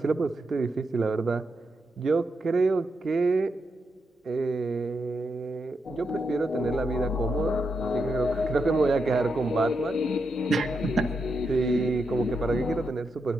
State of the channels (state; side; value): normal; both; correlation 0.84